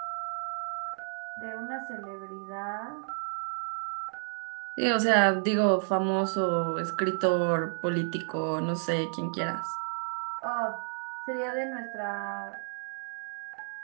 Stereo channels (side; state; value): left; silent; 57 dB below the other